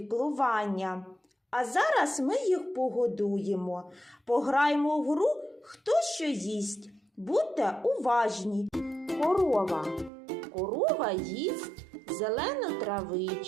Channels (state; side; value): drops out; left; at 10.1 s